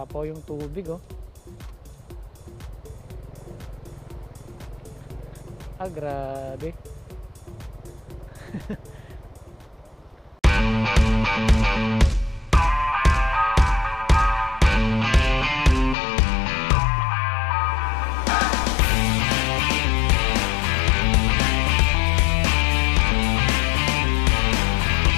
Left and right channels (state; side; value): drops out; right; at 16.0 s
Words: yung tubig oh. Grabe.